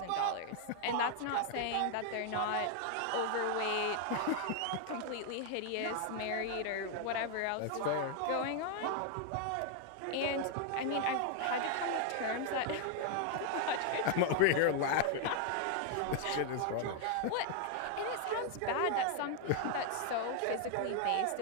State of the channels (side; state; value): both; different; correlation 0.00